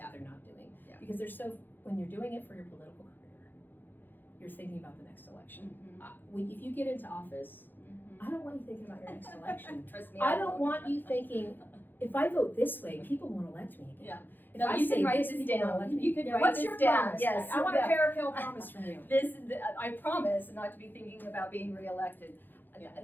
they're not doing. Because they're when you're doing it for your political career, you're thinking about the next election. If you get into office, I don't want you thinking about your next election. Trust me, I don't want you thinking, if I vote this way, people won't elect me again. If I you say can write this people won't down. elect me. You could write What's this your down. promise? Yes. I want a Parakill promise from you. I promise not to be thinking about being reelected.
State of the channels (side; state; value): right; late; 0.091 ms